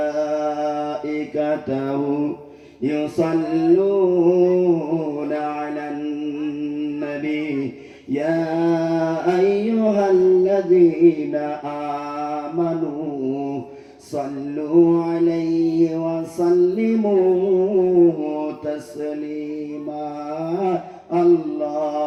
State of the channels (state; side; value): identical; both; correlation 1.00